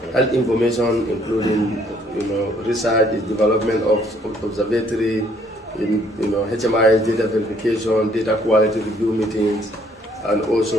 health information, including research, development of observatory, HMI data verification, data quality review meetings, and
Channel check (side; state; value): both; normal; correlation 0.64